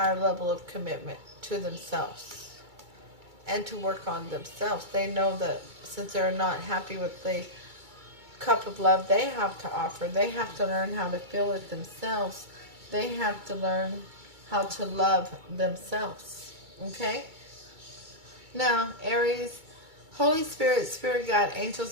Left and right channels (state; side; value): late; left; 2.3 ms